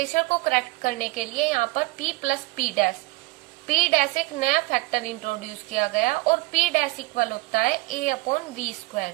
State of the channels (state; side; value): quieter; left; 22.8 dB